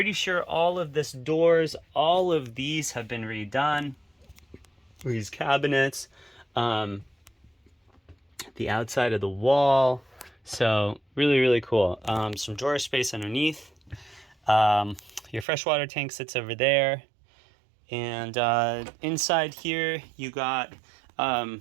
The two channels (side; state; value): left; drops out; at 15.5 s